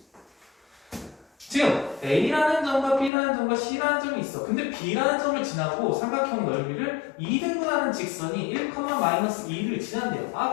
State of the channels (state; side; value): drops out; right; at 3.1 s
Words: 지금 A라는 점과 B라는 점과 C라는 점이 있어. 근데 B라는 점을 지나고 삼각형 넓이를 2등분하는 직선이 1,-2를 지난대요.